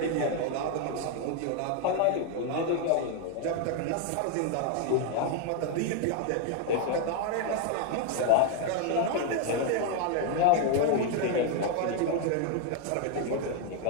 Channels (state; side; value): different; both; correlation 0.01